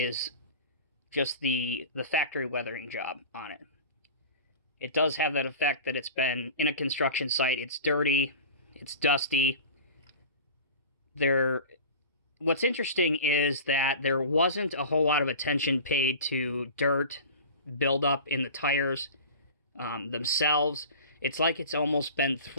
just the factory weathering job on it. It does have that effect that it's been in a construction site. It's dirty. It's dusty. What's interesting is that there wasn't a whole lot of attention paid to dirt buildup in the tires themselves. It's like it's almost been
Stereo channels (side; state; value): both; inverted; correlation -0.36